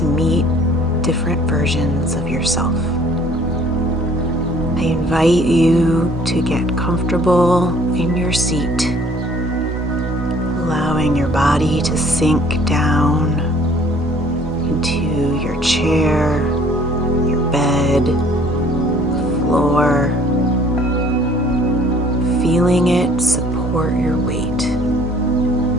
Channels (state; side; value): normal; both; correlation 0.56